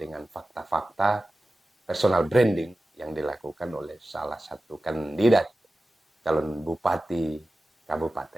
fakta-fakta personal branding yang dilakukan oleh salah satu kandidat calon bupati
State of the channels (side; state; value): both; normal; correlation 0.95